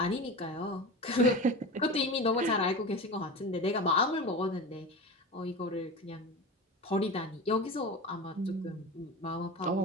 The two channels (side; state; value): both; normal; correlation 0.28